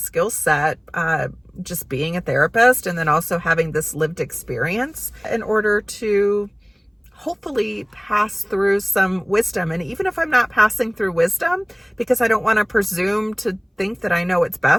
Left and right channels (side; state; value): both; identical; correlation 1.00